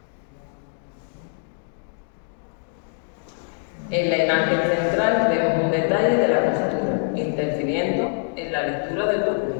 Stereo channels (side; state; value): right; silent; digital silence